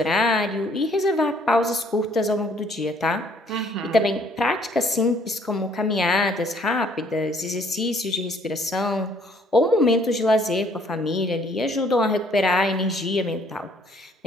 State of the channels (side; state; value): both; normal; correlation 0.62